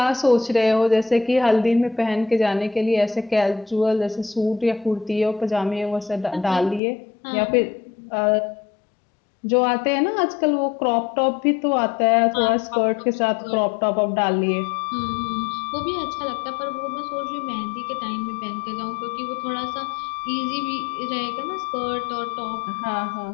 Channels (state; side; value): drops out; right; at 6.8 s